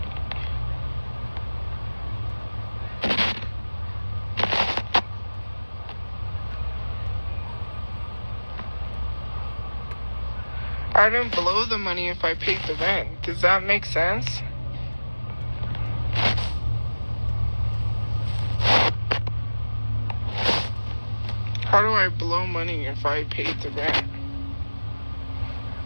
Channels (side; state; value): both; inverted; correlation -1.00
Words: I didn't blow the money if I paid the rent. Does that make sense? How do I blow money if I paid the rent?